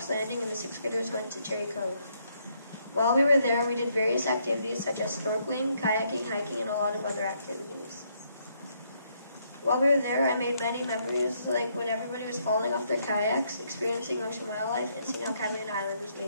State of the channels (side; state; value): both; inverted; correlation -0.73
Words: Landing and the 6th graders went to Cherry Cove. While we were there, we did various activities such as snorkeling, kayaking, hiking, and a lot of other activities. While we were there, I made many memories, like when everybody was falling off their kayaks, experiencing ocean wildlife, and seeing how Catalina Island was